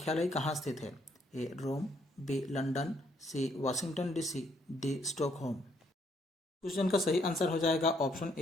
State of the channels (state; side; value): normal; both; correlation 0.70